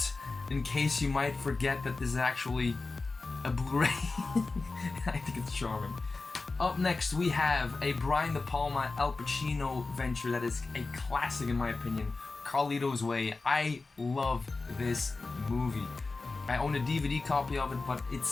in case you might forget that this is actually a Blu-ray. I think it's charming. Up next, we have a Brian De Palma Al Pacino venture that is a classic in my opinion, Carlito's Way. I love this movie. I own a DVD copy of it, but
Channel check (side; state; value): right; quieter; 3.7 dB